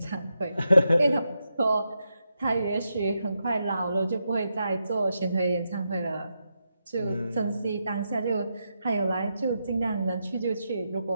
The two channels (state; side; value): inverted; both; correlation -0.85